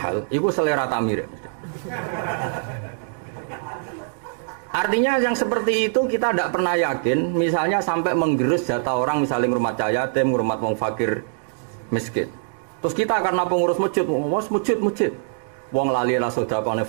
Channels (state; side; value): silent; left; digital silence